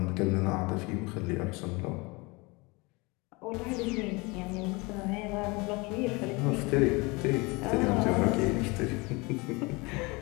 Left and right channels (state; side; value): quieter; right; 26.0 dB